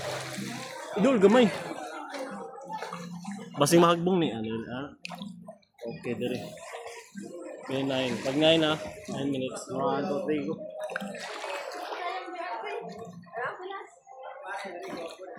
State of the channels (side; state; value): both; identical; correlation 1.00